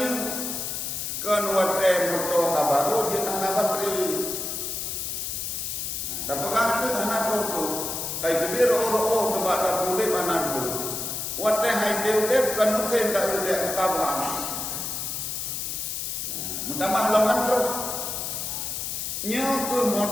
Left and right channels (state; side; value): noise; left; hiss, 4 dB below the sound